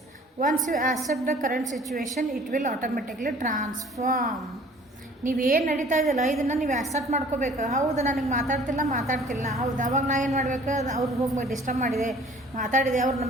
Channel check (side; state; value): both; normal; correlation 0.52